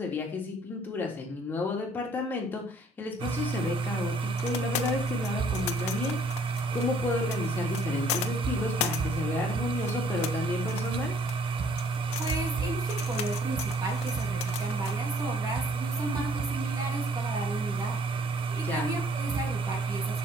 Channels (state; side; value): normal; both; correlation 0.61